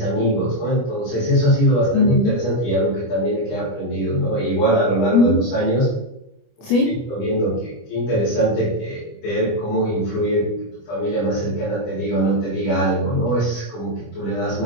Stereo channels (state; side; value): late; right; 25 ms